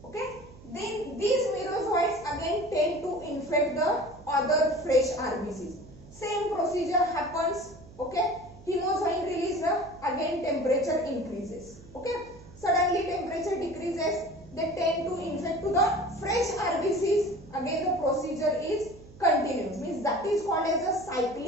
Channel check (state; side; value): noise; right; hum, 20 dB below the sound